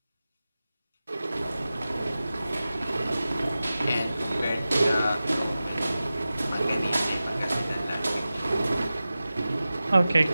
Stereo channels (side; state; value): both; inverted; correlation -0.95